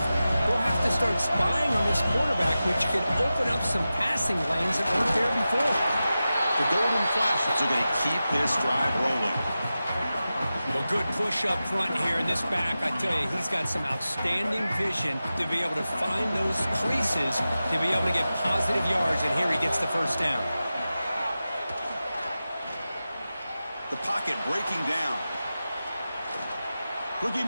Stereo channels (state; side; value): inverted; both; correlation -0.94